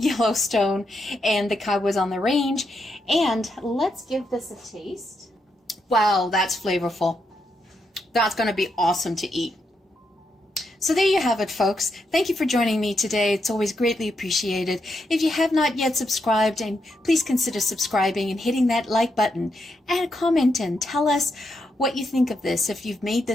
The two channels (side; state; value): both; normal; correlation 0.82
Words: and the Cowboys on the Range. And let's give this a taste. Wow, that's flavorful. That's going to be awesome to eat. So there you have it, folks. Thank you for joining me today. It's always greatly appreciated. If you have not yet subscribed, and please consider subscribing and hitting that like button. Add a comment and tell us what you think of this, if you've made